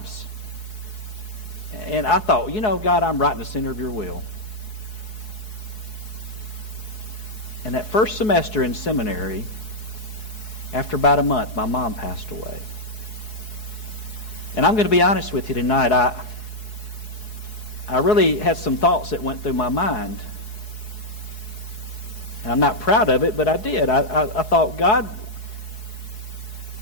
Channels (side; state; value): right; late; 4.7 ms